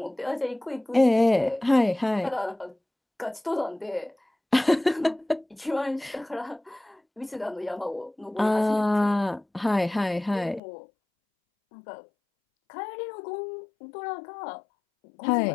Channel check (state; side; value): drops out; right; at 10.6 s